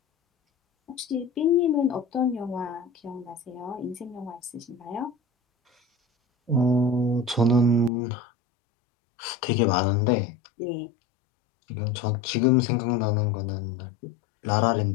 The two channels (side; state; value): right; drops out; at 7.9 s